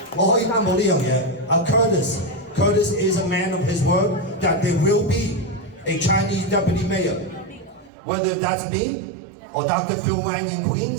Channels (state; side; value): drops out; left; at 7.9 s